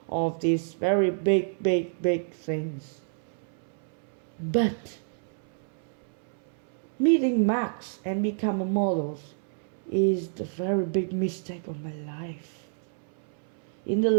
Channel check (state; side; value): silent; left; 59 dB below the other